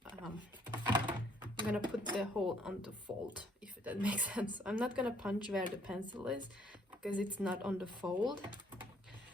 I'm gonna put the hole on the fold, if that makes sense. I'm not gonna punch where the pencil is because it's not on the fold.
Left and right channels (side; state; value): both; normal; correlation 0.65